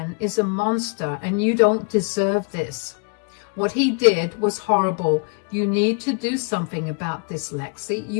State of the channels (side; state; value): right; quieter; 38.4 dB